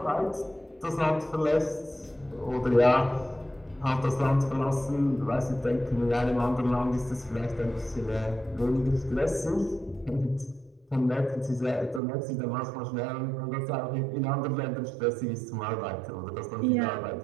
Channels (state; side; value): drops out; left; at 12.0 s